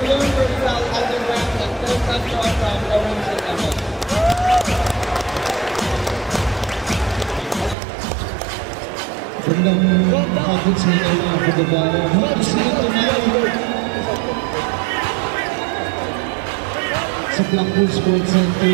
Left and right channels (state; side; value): drops out; left; at 7.8 s